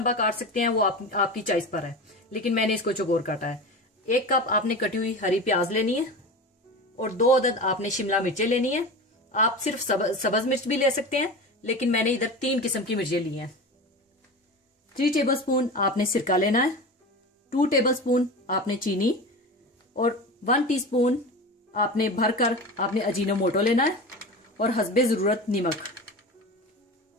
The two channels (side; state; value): both; normal; correlation 0.29